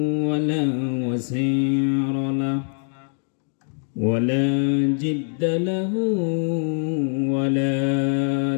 ولا وزير له ولا جد له ولا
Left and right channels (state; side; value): silent; right; 55 dB below the other